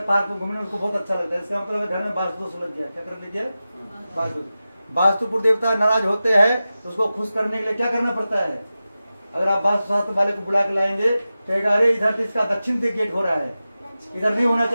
पार्क में घूमने उसको बहुत अच्छा लगता है। इसका मतलब है घर में वास्तु दोष लग गया। क्या कर लीजिए? वास्तु। वास्तुपुर देवता नाराज होते हैं तो उसको खुश करने के लिए क्या करना पड़ता है? अगर आप वास्तु शास्त्र वाले को बुला के लाएंगे तो कहेगा अरे इधर तो इसका दक्षिण से गेट हो रहा है, इधर नहीं होना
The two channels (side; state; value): both; inverted; correlation -0.94